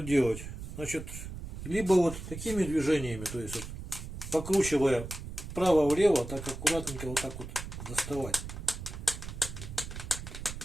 делать? Значит, либо вот такими движениями, то есть вот, покручивая вправо-влево, так аккуратненько вот так вот доставать.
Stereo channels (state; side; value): noise; right; rumble, 9 dB below the sound